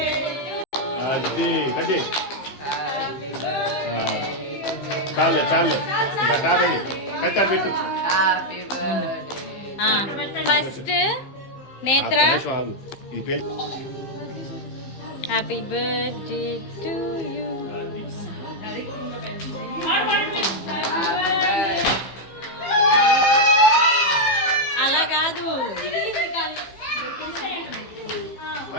చాలే చాలే కాదండి కట్టాలి పెట్టు. First Netra. Happy birthday to you. అలా కాదు.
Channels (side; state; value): right; late; 15 ms